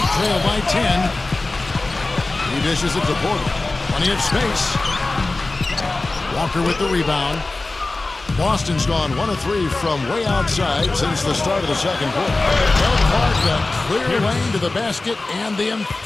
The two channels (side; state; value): right; quieter; 3.2 dB